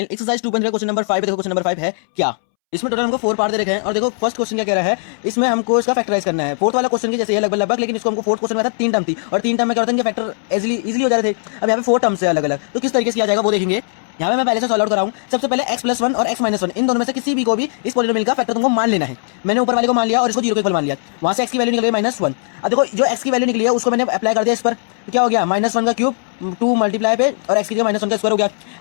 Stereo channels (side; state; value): right; silent; 67 dB below the other